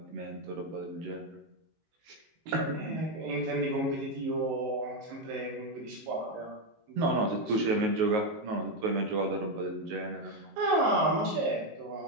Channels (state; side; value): late; left; 19 ms